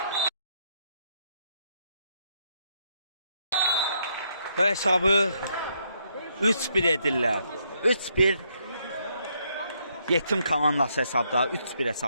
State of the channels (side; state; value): both; inverted; correlation -0.75